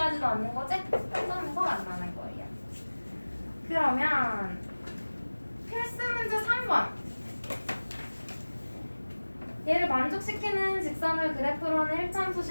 않는 거지? 한 점에서 만나는 거예요. 그러면 필수 문제 3번. 얘를 만족시키는 직선을 그래프로 하는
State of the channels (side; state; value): both; inverted; correlation -1.00